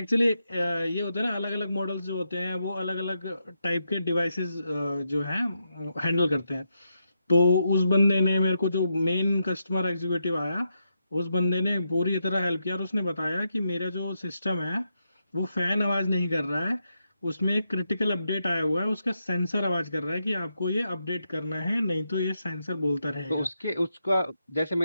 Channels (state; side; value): inverted; both; correlation -0.83